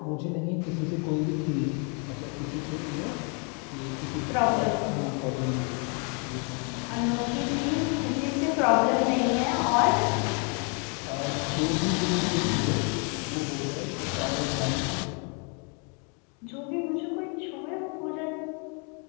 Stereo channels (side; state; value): right; quieter; 37.0 dB